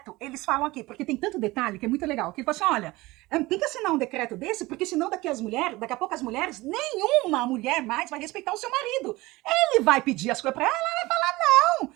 eles falam aqui, porque tem tanto detalhe que é muito legal, que ele fala assim, olha, tem que assinar um decreto desse, porque senão daqui a pouco as mulheres, nenhuma mulher mais vai respeitar o seu marido. Ele vai pedir as coisas para ela, ela vai falar, não.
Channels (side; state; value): left; quieter; 20.3 dB